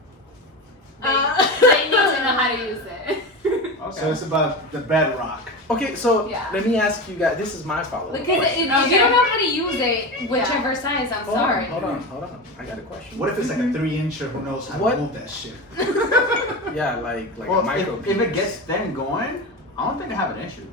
they need to know how to use it. Okay. So it's about the bedrock. Okay, so Yeah. let me ask you guys. This is my follow-up Because question. if you don't know how to use it, whichever size, I'm Hold sorry. on. I got a question. What if it's like a 3-incher who knows how What? to move that shit? Yeah, like a Well, micro. if it gets them going, I don't think I have an issue.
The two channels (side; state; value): both; normal; correlation 0.23